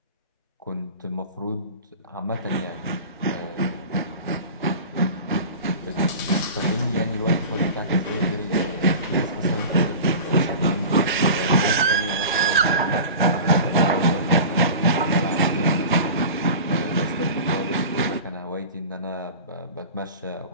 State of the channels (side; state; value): both; inverted; correlation -0.35